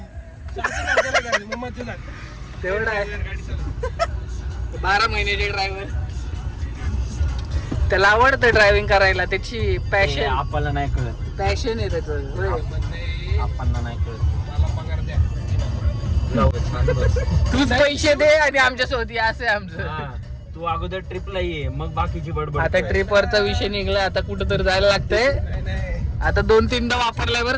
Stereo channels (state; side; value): identical; both; correlation 1.00